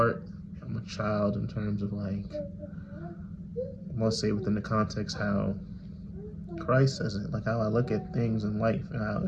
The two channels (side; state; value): both; identical; correlation 1.00